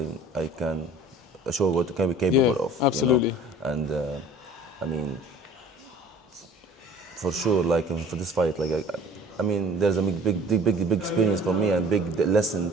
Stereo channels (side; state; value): both; normal; correlation 0.46